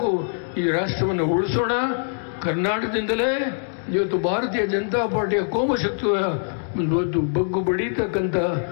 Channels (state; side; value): silent; right; digital silence